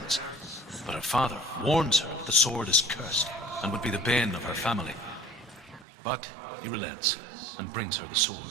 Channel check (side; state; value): left; drops out; at 5.9 s